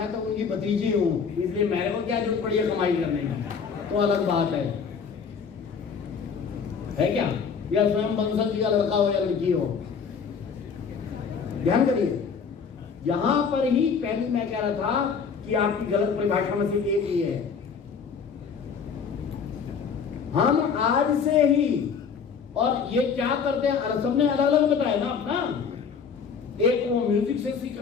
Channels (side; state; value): right; quieter; 6.2 dB